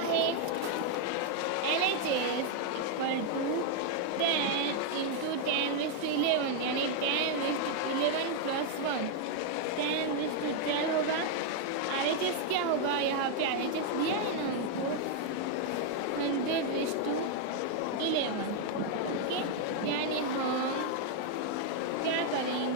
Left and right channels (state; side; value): different; both; correlation 0.00